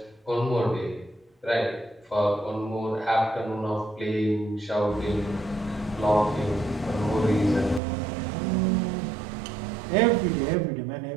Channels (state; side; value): drops out; left; at 7.8 s